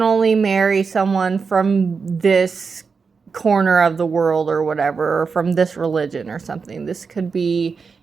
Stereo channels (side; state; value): left; quieter; 5.2 dB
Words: only marry someone from this corner of the world or whatever, or from this religion or something. This could be